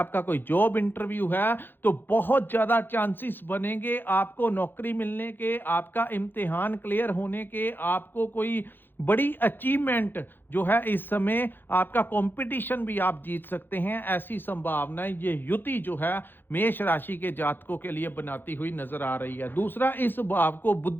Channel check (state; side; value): late; right; 0.098 ms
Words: कोई जॉब इंटरव्यू है, तो बहुत ज्यादा चांसेस बनेंगे आपको नौकरी मिलने के, आपका इम्तिहान क्लियर होने के, आपको कोई बड़ी अचीवमेंट जो है इस समय, आपका कंपटीशन भी आप जीत सकते हैं। ऐसी संभावनाएं ये युति जो है मेष राशि के जातकों के लिए बनाती हुई नजर आ रही है। दूसरा, इस भाव को